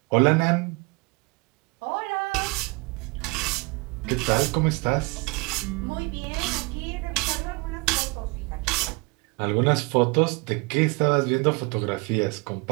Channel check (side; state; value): left; quieter; 28.8 dB